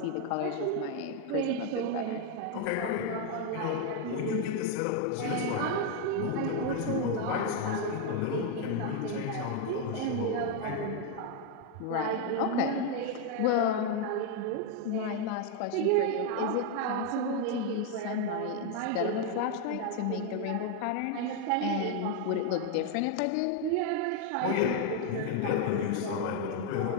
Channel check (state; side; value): different; both; correlation 0.01